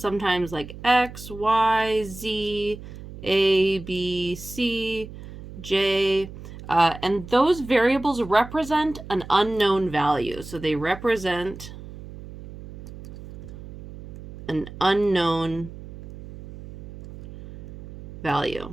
like X, Y, Z, A, B, C, J, and those variables represent an unknown value. So they represent an unknown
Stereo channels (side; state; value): right; noise; hum, 14 dB below the sound